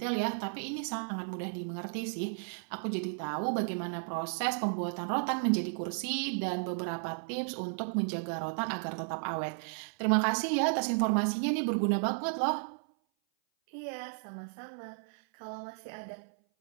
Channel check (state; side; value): silent; left; 55 dB below the other